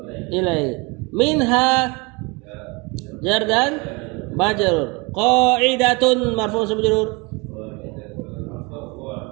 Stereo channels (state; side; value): quieter; left; 27.8 dB